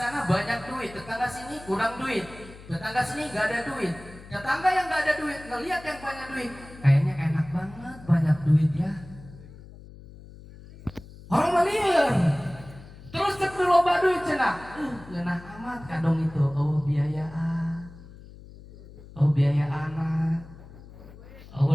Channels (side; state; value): left; noise; hum, 18 dB below the sound